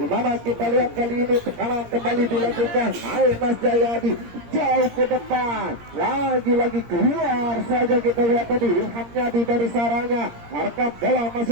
kita lihat kali ini tekanan kembali dilakukan Mas Jayadi jauh ke depan lagi keluar saja kita lihat tadi Ilham Yadi dari sarangnya arahkan bola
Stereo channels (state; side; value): late; left; 17 ms